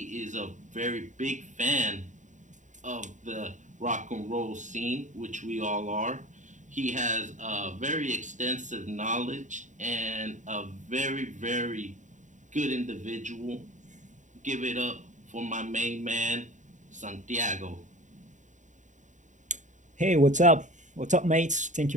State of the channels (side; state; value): left; late; 0.36 ms